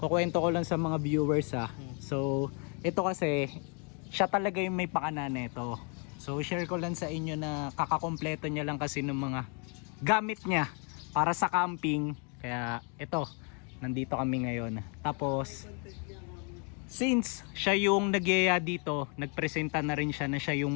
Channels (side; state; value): right; quieter; 37.0 dB